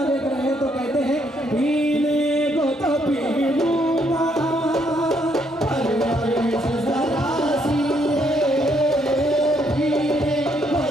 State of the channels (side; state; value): both; normal; correlation 0.72